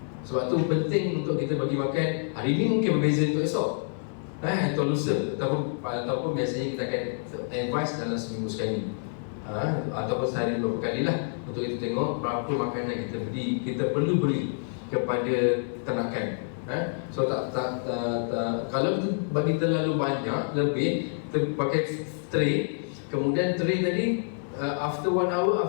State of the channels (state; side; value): silent; right; digital silence